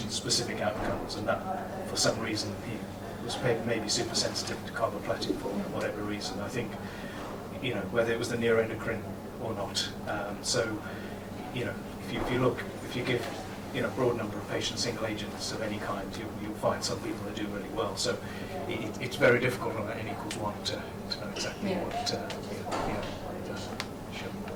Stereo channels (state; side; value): identical; both; correlation 1.00